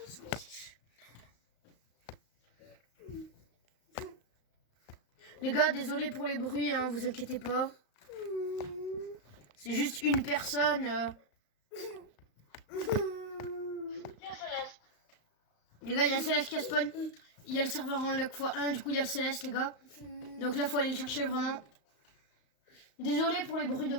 ce que c'est. Les gars, désolé pour les bruits, hein, vous inquiétez pas. C'est juste une personne. Il y a Céleste. Les gars, il y a un Céleste qui a spawn. Il y a le serveur en luck x1, du coup il y a le Céleste, les gars. Donc là, faut aller le chercher vraiment. Désolé pour les bruits de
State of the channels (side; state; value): right; late; 35 ms